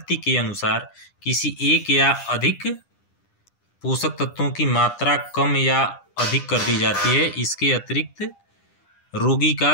के अनुसार किसी एक या अधिक पोषक तत्वों की मात्रा कम या अधिक कर दी जाती है। इसके अतिरिक्त रोगी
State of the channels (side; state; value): right; late; 9.9 ms